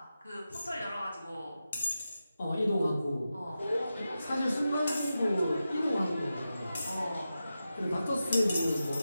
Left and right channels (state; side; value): inverted; both; correlation -0.91